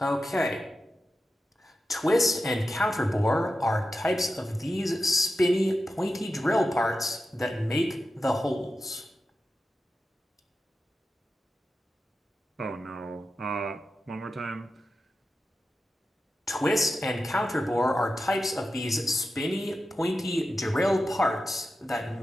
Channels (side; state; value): both; normal; correlation 0.91